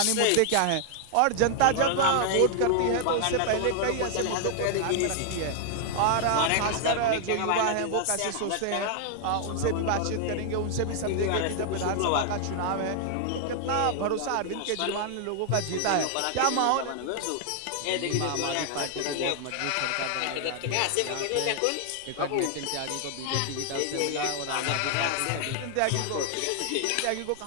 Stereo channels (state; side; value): different; both; correlation 0.00